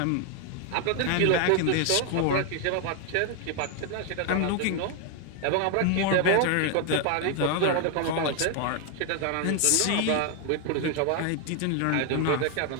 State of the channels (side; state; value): both; different; correlation 0.01